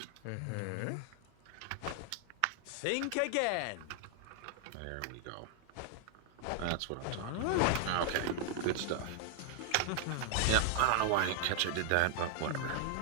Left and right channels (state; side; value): different; both; correlation 0.00